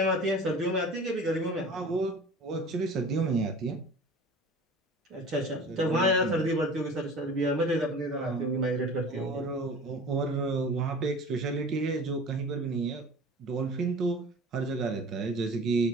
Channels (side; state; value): both; normal; correlation 0.40